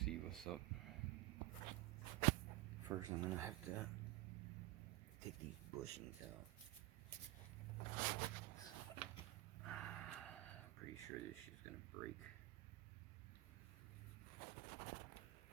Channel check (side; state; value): left; quieter; 18.3 dB